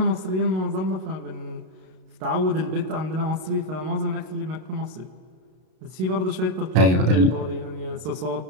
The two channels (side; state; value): left; late; 32 ms